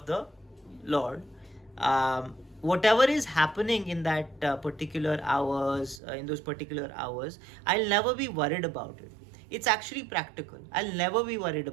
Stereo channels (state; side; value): drops out; left; at 6.0 s